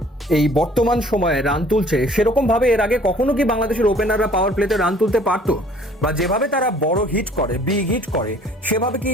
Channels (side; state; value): both; normal; correlation 0.54